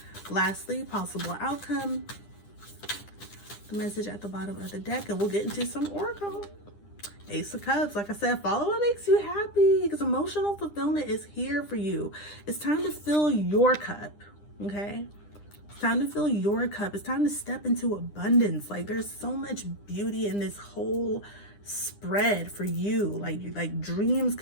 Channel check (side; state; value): right; late; 9.9 ms